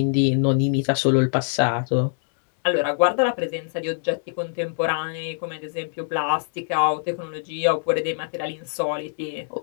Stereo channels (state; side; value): silent; right; digital silence